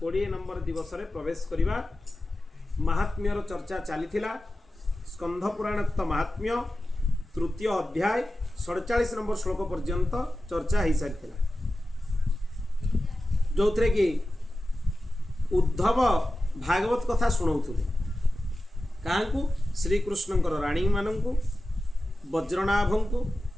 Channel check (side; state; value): both; normal; correlation 0.94